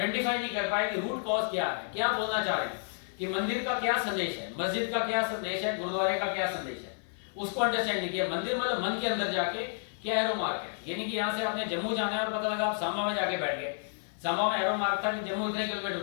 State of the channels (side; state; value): right; silent; digital silence